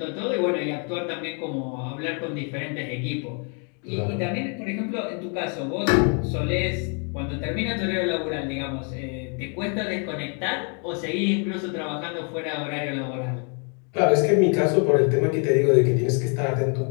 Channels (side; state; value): right; quieter; 39.0 dB